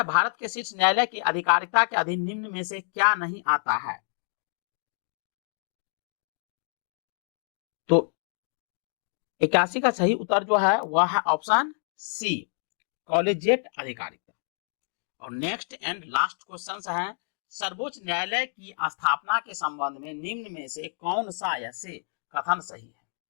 भारत के शीर्ष न्यायालय की आधिकारिकता के अधीन निम्न में से क्या नहीं आता है? तो 81 का सही उत्तर जो है वह है ऑप्शन सी, कॉलेजिएट अधिकारिकता। और नेक्स्ट एंड लास्ट क्वेश्चन है, सर्वोच्च न्यायालय की स्थापना के संबंध में निम्न में से कौन सा ऐसे कथन सही है?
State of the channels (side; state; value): right; silent; digital silence